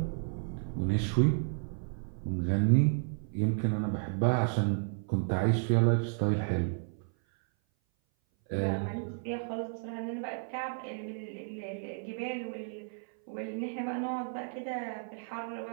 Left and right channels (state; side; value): silent; left; 56 dB below the other